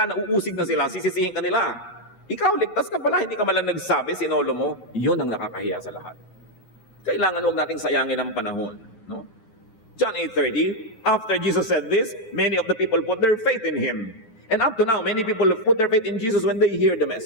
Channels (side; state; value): right; late; 9.4 ms